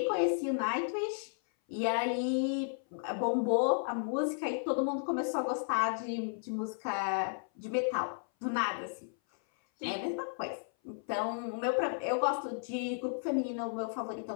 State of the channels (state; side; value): silent; right; 55 dB below the other